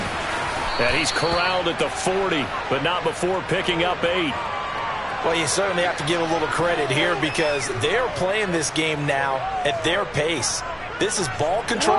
And he's corralled at the 40, but not before picking up 8. Well, you certainly have to give a little credit here because they're playing this game now at their pace. This is ball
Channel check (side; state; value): both; identical; correlation 1.00